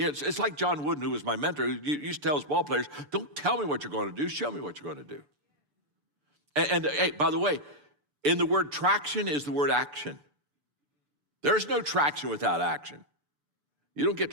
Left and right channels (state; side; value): late; left; 6.9 ms